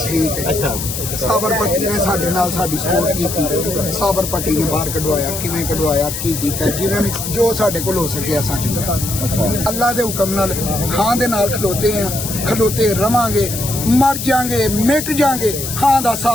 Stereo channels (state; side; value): noise; left; hiss, 6 dB below the sound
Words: ਠੀਕ ਹੈ। ਸਾਬਰ ਪੱਟੀ ਨੇ ਸਾਡੇ ਨਾਲ ਸਾਡੀ ਸਪੋਰਟ ਕੀਤੀ। ਸਾਬਰ ਪੱਟੀ ਨੇ ਬਾਹਰ ਕਢਵਾਇਆ, ਕਿਵੇਂ ਕਢਵਾਇਆ, ਕੀ ਕੀਤਾ, ਜਿਵੇਂ ਵੀ ਜੋ ਸਾਡੇ ਕੋਲ ਹੋ ਸਕਿਆ ਅਸਾਂ ਕੀਤਾ। ਅੱਲਾ ਦੇ ਹੁਕਮ ਨਾਲ ਹਾਂ ਦੇ ਨਾਲ ਖਲੋਤੇ ਆ, ਖਲੋਤੇ ਰਵਾਂਗੇ, ਮਰ ਜਾਾਂਗੇ, ਮਿਟ ਜਾਾਂਗੇ, ਹਾਂ ਦਾ